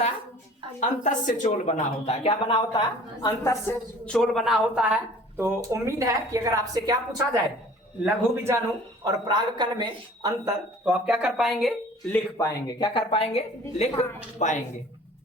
है? अंतस्थ चोल बना होता है। क्या बना होता है? अंतस्थ चोल बना होता है। तो उम्मीद है कि अगर आपसे क्या पूछा जाए लघु बीजाणु और पराग कण में अंतर तो आप क्या कर पाएंगे? लिख पाएंगे। क्या कर पाएंगे? लिख पाएंगे।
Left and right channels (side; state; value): both; normal; correlation 0.48